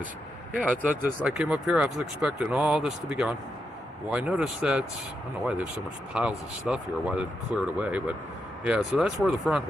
yeah, I came up here, I was expecting all this to be gone. Well, I noticed that, I don't know why there's so much piles of stuff here, why they didn't clear it away, but yeah, so that's where the front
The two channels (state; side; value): normal; both; correlation 0.84